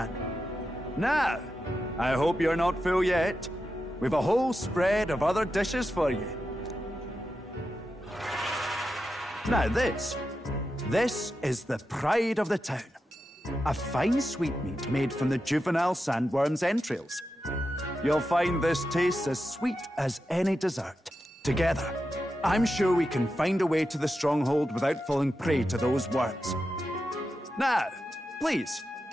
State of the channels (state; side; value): normal; both; correlation 0.89